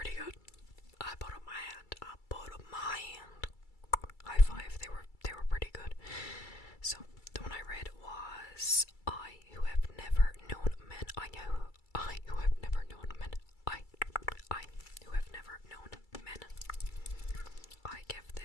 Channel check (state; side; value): late; right; 2.3 ms